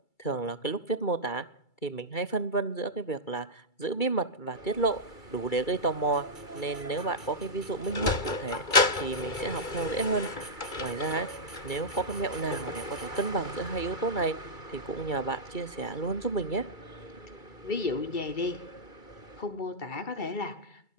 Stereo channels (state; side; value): late; right; 2.3 ms